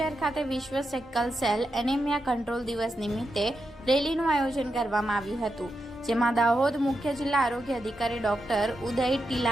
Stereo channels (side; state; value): both; normal; correlation 0.86